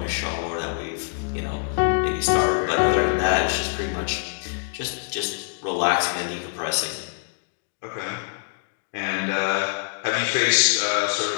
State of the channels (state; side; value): silent; right; digital silence